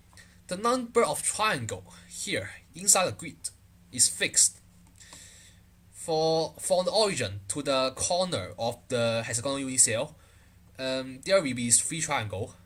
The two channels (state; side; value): identical; both; correlation 1.00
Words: The number of triangle here inside the grid is fixed. From the origin to the corner of the hexagonal unit cell, there will be 3 triangles,